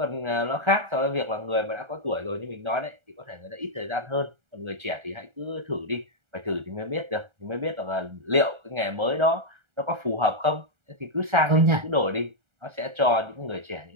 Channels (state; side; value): late; left; 1.4 ms